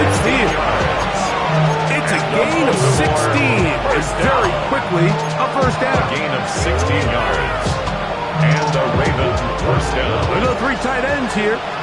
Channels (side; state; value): both; identical; correlation 1.00